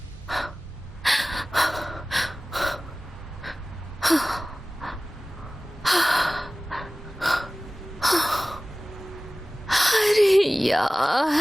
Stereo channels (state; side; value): normal; both; correlation 0.98